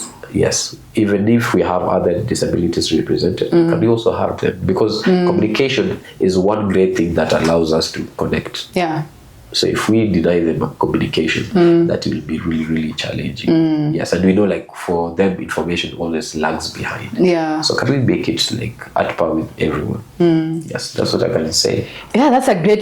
Yes, even if we have other disabilities represented, can we also have them? Because communication is one great thing that allows us to connect. Yeah. So if we deny them communication, that will be really, really challenging. Yes, and we know like for them, information always lags behind. Yeah. So can we make it like at par with everyone? Yes, that's what I can say. Yeah, that's a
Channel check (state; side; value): identical; both; correlation 1.00